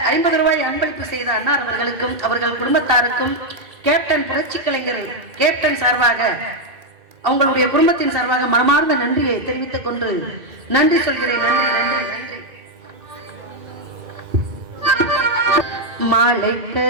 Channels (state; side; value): late; left; 2.7 ms